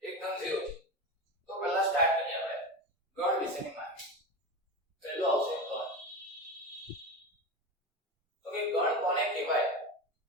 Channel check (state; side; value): normal; both; correlation 0.23